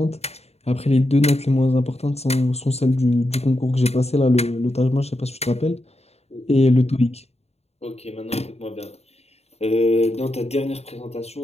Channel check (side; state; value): right; late; 0.30 ms